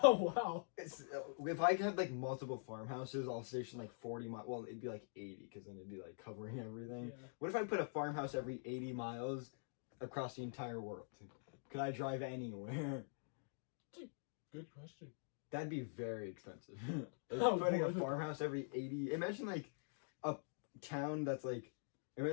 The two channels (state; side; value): silent; right; digital silence